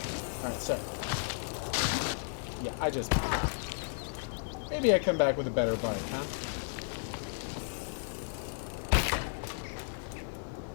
Alright, so. Yeah, I just... Maybe I come back with a better bite, huh?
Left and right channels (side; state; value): right; silent; digital silence